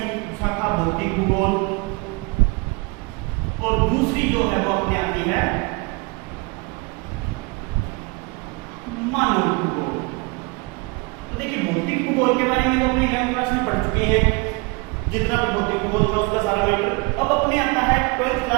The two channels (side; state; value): left; quieter; 27.2 dB